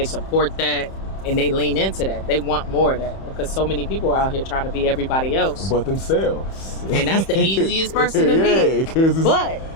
support that, and they lean into that. They want more of that, because so many people are out here trying to be everybody else But themselves. and that's the easiest person to be. But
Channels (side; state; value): right; late; 31 ms